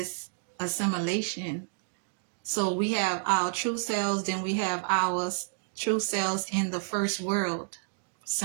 assimilation. So we have our true selves, then we have our true selves in the first world,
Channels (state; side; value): silent; left; digital silence